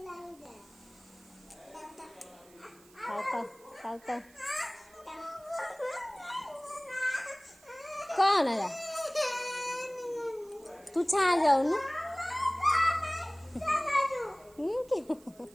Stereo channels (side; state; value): right; noise; hiss, 26 dB below the sound